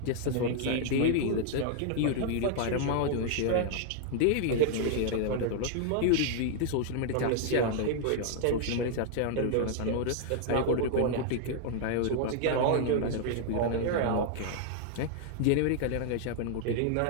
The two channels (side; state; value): both; different; correlation -0.01